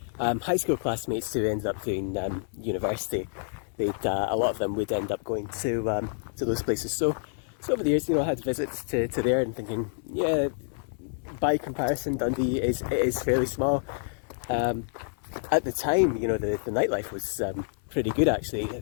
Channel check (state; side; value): silent; right; 59 dB below the other